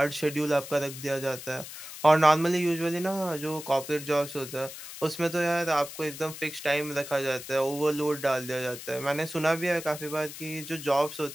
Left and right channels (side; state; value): left; noise; hiss, 12 dB below the sound